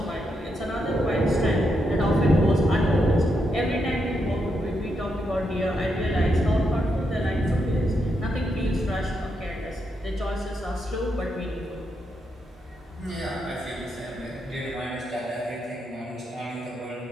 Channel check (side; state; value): both; normal; correlation 0.82